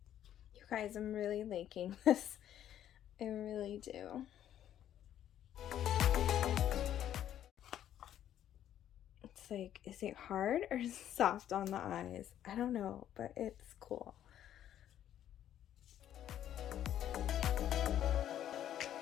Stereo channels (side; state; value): right; quieter; 11.0 dB